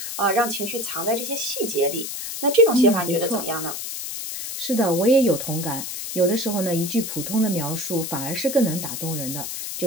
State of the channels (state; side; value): noise; left; hiss, 6 dB below the sound